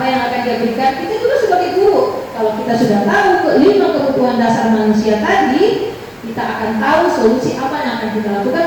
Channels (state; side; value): identical; both; correlation 1.00